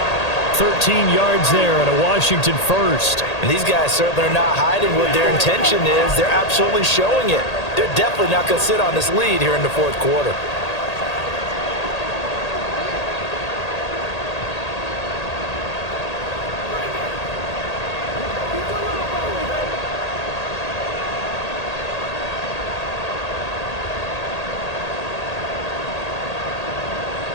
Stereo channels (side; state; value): right; late; 1.8 ms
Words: 13 yards there and a Washington first. And these guys certainly are not hiding what their intention is. They're absolutely showing it. They're definitely not going to sit on this lead here in the 4th quarter.